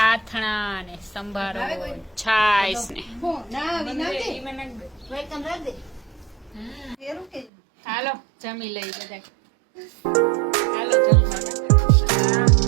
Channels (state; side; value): drops out; left; at 7.5 s